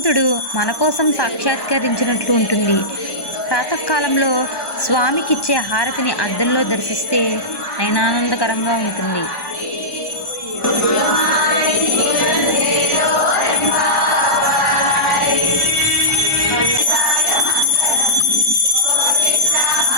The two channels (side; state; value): right; late; 1.2 ms